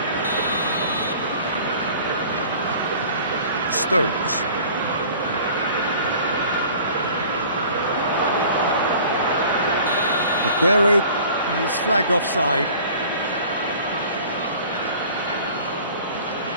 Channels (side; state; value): both; inverted; correlation -0.47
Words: Stones. Aguero is flagged offside.